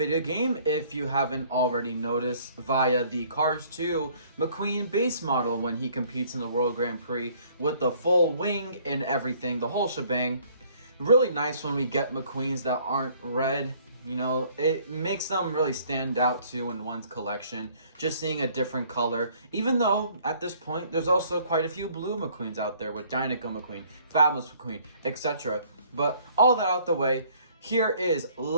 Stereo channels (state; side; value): inverted; both; correlation -0.59